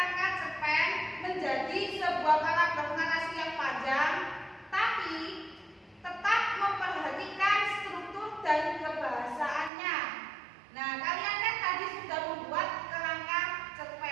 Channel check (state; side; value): drops out; left; at 9.7 s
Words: cerpen menjadi sebuah paragraf narasi yang panjang, tapi tetap memperhatikan struktur dan kebahasaannya. Nah, kalian kan tadi sudah membuat kerangka